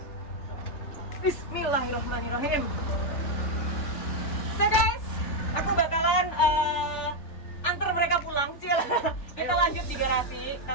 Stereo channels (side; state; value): right; late; 3.4 ms